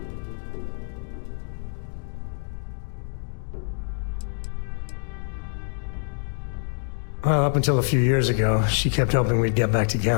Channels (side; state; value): right; silent; digital silence